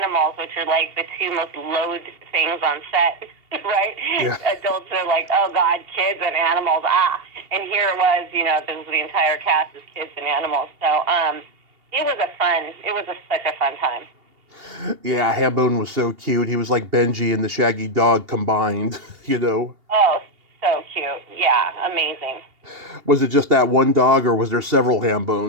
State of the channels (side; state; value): left; late; 2.8 ms